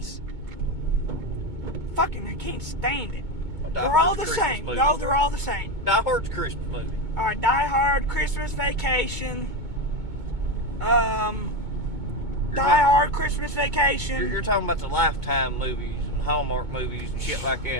Fucking, I can't stand it. Die They're all Hard's the a Christmas same. movie. No, they're all the same. Die Hard's a Christmas movie. Alright, Die Hard, Christmas Vacation. Die Hard, Christmas Vacation. You're talking about the Lifetime movies and Hallmark movies and shit like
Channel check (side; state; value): left; late; 2.2 ms